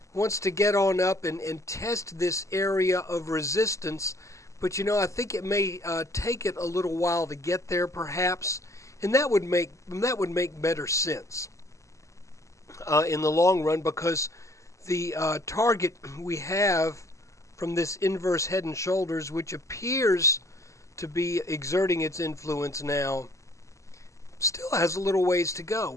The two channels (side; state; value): right; late; 0.15 ms